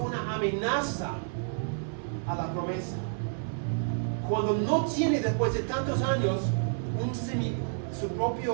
amenaza a la promesa. Cuando no tiene después de tantos años un su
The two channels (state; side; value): silent; left; 58 dB below the other